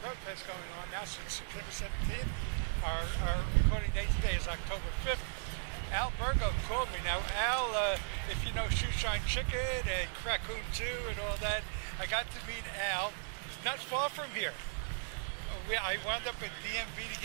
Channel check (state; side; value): silent; left; digital silence